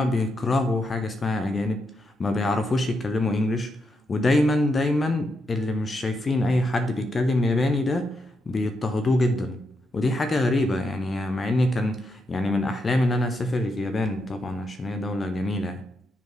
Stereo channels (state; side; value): normal; both; correlation 0.82